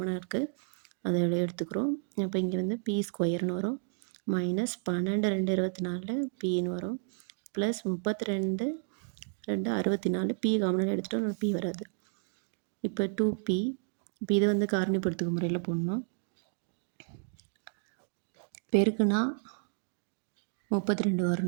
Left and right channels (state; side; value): silent; left; digital silence